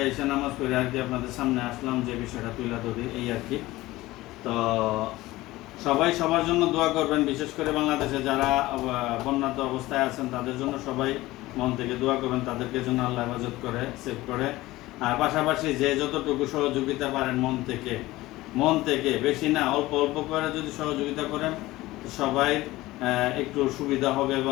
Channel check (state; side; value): quieter; right; 18.1 dB